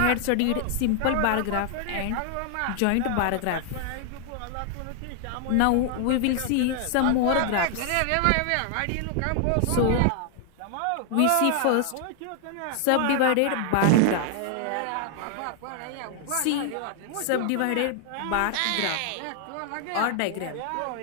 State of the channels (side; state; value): both; different; correlation 0.00